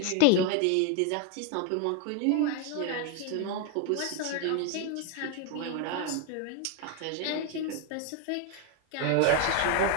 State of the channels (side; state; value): both; different; correlation 0.01